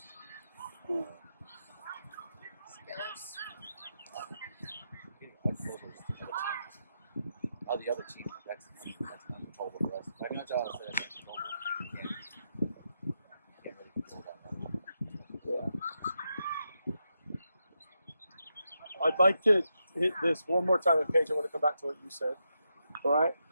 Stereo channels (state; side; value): inverted; both; correlation -0.85